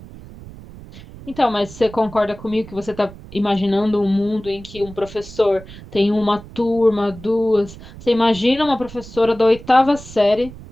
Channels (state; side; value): noise; right; rumble, 17 dB below the sound